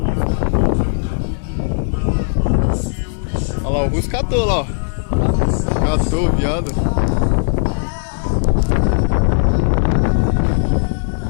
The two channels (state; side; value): silent; right; 68 dB below the other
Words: Olha lá, o Russo catou lá, ó. Catou, viado.